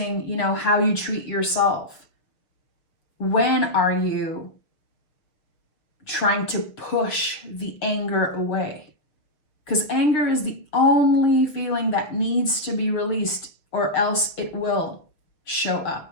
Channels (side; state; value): right; late; 6.6 ms